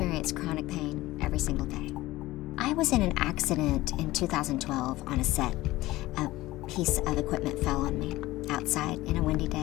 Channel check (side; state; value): right; quieter; 17.8 dB